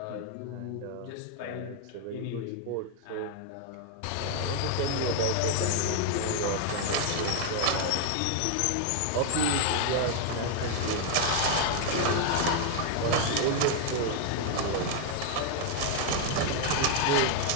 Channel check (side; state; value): both; different; correlation 0.00